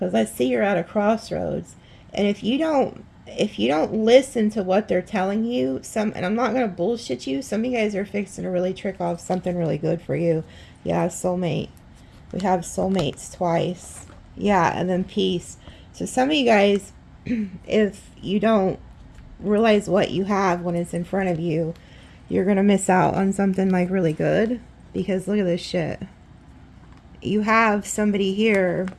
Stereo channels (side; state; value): both; identical; correlation 1.00